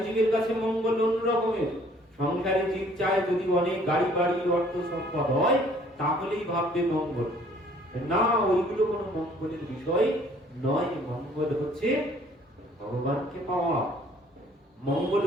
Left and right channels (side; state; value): both; normal; correlation 0.58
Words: জীবের কাছে মঙ্গল অন্য রকমের। সংসারী জীব চায় যদি অনেক গাড়ি বাড়ি অর্থ সম্পদ হয় তাহলেই ভাববে মঙ্গল। না, ওইগুলো কোনো মঙ্গলের বিষয় নয়। মঙ্গল হচ্ছে ভগবানকে পাওয়া। মঙ্গল